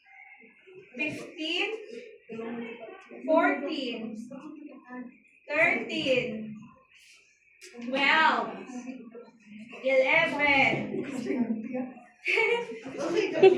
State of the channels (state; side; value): identical; both; correlation 1.00